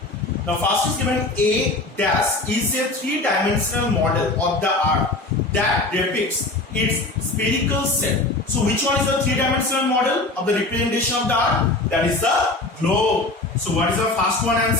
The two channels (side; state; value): right; quieter; 3.0 dB